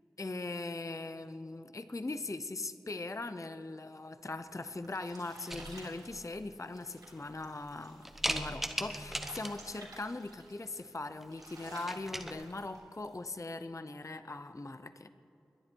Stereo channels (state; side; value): normal; both; correlation 0.76